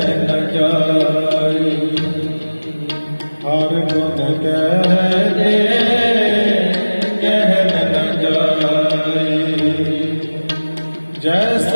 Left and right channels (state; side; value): inverted; both; correlation -1.00